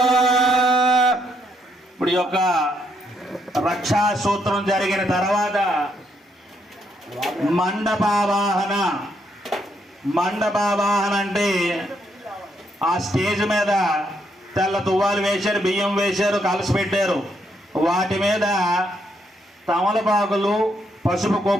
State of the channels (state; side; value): normal; both; correlation 0.75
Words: ఇప్పుడు ఈ యొక్క రక్షా సూత్రం జరిగిన తర్వాత మండపావాహన. మండపావాహన అంటే ఆ స్టేజ్ మీద తెల్ల తువ్వాలు వేశారు, బియ్యం వేశారు, కలసి పెట్టారు. వాటి మీద తమలపాకులు, పసుపు